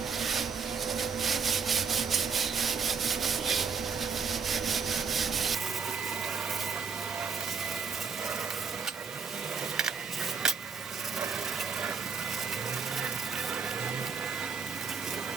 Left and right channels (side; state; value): left; quieter; 5.7 dB